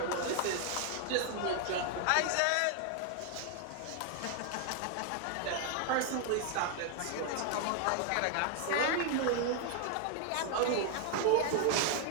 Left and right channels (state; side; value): different; both; correlation 0.00